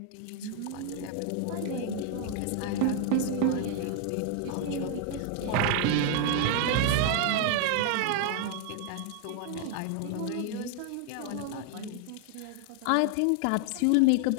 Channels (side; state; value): both; different; correlation 0.00